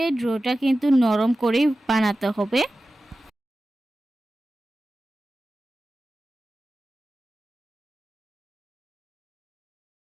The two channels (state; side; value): normal; both; correlation 0.95